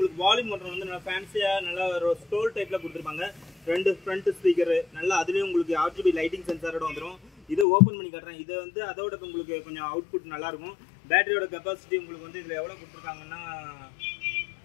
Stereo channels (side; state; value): right; drops out; at 7.7 s